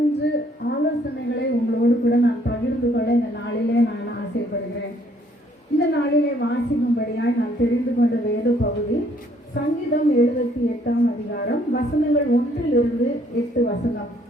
ஆலோசனைகளை உங்களோடு கூட நான் பகிர்ந்து கொள்ள இந்த நாளிலே நான் ஆசைப்படுகிறேன். இந்த நாளிலே வாசிக்கும்படியாய் நான் தெரிந்து கொண்ட வேத பகுதி சங்கீதம் 78ஆம் அதிகாரம் வசனங்கள் 1-8 வசனம்.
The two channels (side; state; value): both; normal; correlation 0.65